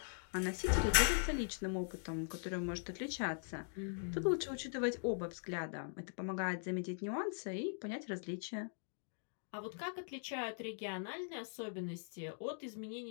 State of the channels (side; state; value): right; silent; digital silence